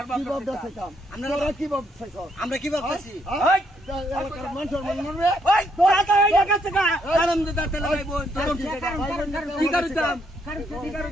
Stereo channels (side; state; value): both; normal; correlation 0.73